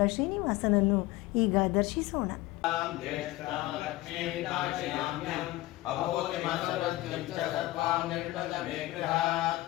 ಶ್ರೀನಿವಾಸನನ್ನು ಈಗ ದರ್ಶಿಸೋಣ.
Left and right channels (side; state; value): right; quieter; 18.0 dB